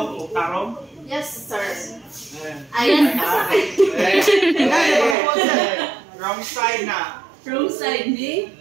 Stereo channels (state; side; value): drops out; left; at 5.2 s